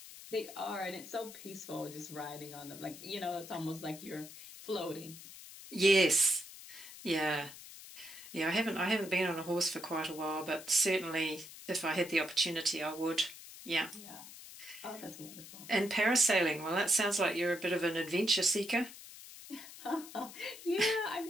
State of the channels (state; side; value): noise; left; hiss, 15 dB below the sound